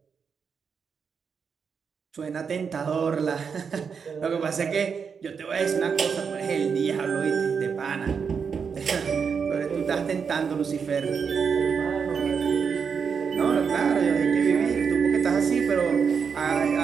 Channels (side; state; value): left; quieter; 6.2 dB